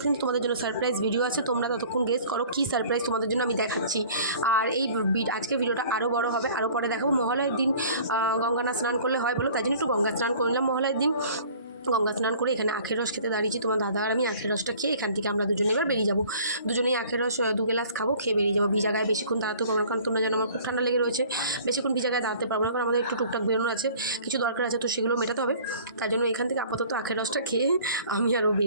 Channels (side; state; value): both; inverted; correlation -0.49